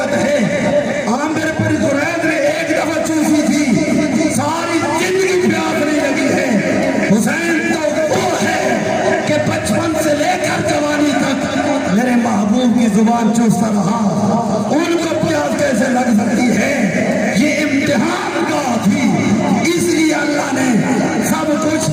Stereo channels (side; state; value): both; identical; correlation 1.00